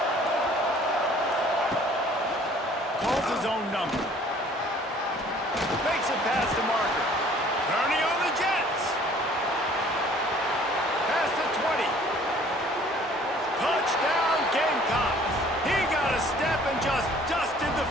Calls his own number. Makes it past the marker. Turning on the Jets. Past the 20. Touchdown Gamecocks. He got a step and just dusted the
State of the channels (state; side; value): normal; both; correlation 0.54